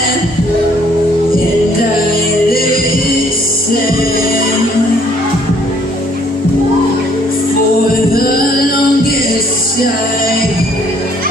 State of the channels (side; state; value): both; normal; correlation 0.63